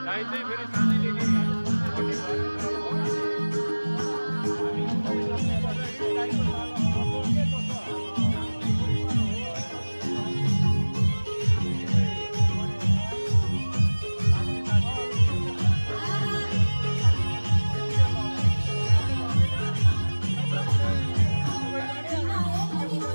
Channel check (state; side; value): inverted; both; correlation -1.00